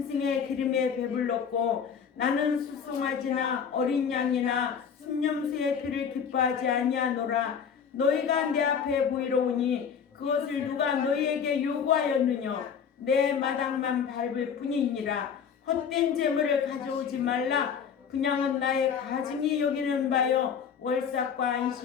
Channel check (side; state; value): right; quieter; 7.1 dB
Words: 기름에 배불렀고 나는 수송아지나 어린 양이나 순념수의 피를 기뻐하지 아니하노라. 너희가 내 앞에 보이러 오니 그것을 누가 너희에게 요구하였느냐. 내 마당만 밟을 뿐이니라. 헛된 재물을 가져오지 말라. 그냥은 나의 가증이 여기는 바요 월삭과